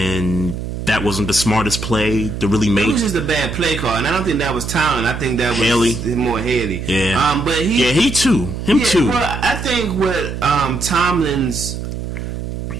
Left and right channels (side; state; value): right; noise; hum, 6 dB below the sound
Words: that wasn't the smartest play to really make. It was just a bad play call, and I don't think that was Tomlin. I think that was Haley. More Haley. Yeah. But he too. Him too. Well, I think what Tomlin's.